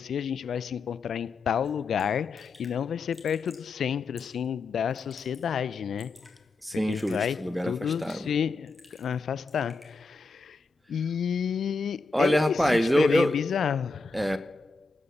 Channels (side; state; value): right; quieter; 3.7 dB